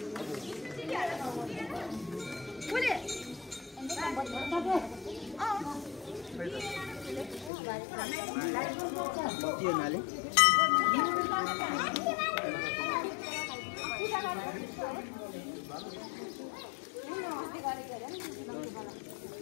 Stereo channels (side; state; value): right; drops out; at 7.5 s